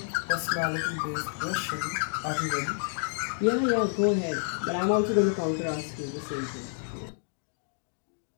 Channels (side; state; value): right; silent; digital silence